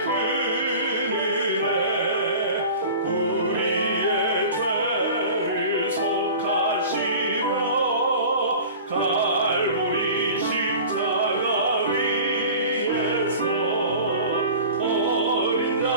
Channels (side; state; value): both; inverted; correlation -0.39